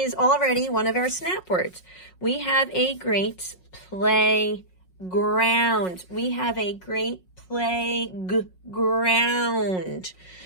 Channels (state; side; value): late; right; 5.5 ms